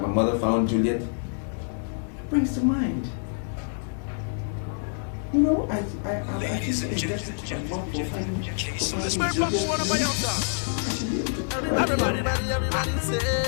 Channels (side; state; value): right; silent; 61 dB below the other